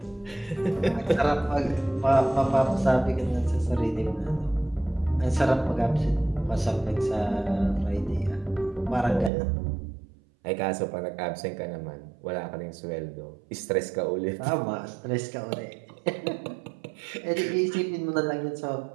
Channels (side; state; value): left; drops out; at 9.3 s